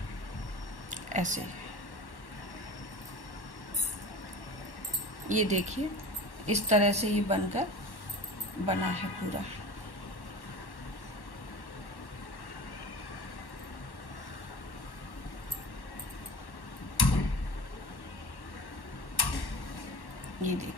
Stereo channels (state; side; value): late; right; 1.1 ms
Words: ऐसे ये देखिए इस तरह से ये बनकर बना है पूरा। ये